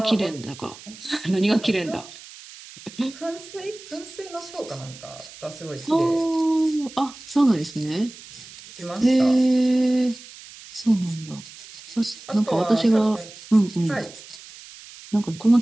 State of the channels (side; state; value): right; noise; hiss, 18 dB below the sound